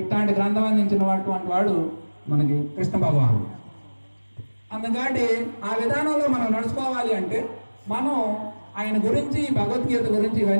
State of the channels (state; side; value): inverted; both; correlation -1.00